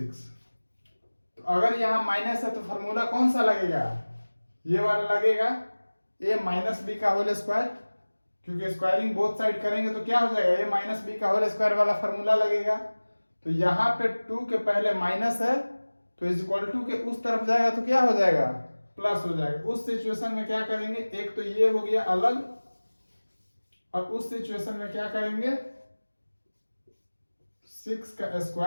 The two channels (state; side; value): inverted; both; correlation -1.00